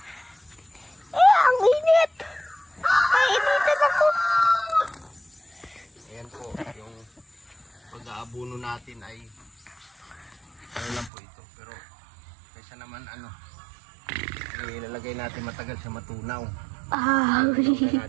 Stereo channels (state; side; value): drops out; left; at 11.1 s